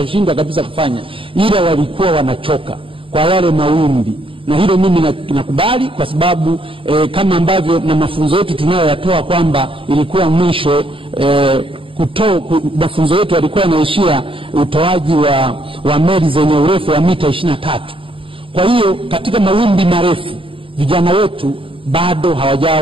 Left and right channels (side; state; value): left; late; 0.26 ms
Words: kabisa kufanya, ila walikuwa wanachoka kwa yale mawimbi. Na hilo mimi nakubali, kwa sababu kama ambavyo na mafunzo yetu tunayoyatoa kwamba ilikuwa mwisho mafunzo yetu yalikuwa yanaishia utoaji wa meli zenye urefu wa mita 23. Kwa hiyo katika mawimbi marefu vijana wetu bado